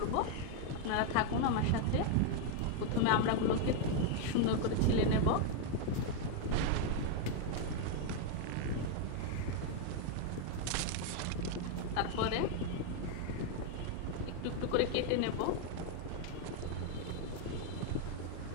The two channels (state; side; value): different; both; correlation 0.00